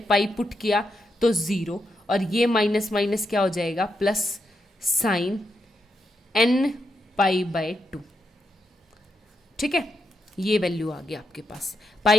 पुट किया तो 0, और ये माइनस माइनस क्या हो जाएगा plus sign n pi by 2, ठीक है। ये वैल्यू आ गया आपके पास,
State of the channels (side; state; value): both; normal; correlation 0.83